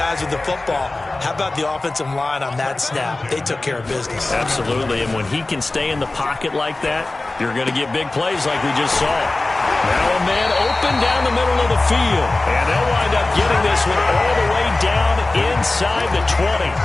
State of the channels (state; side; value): quieter; right; 3.0 dB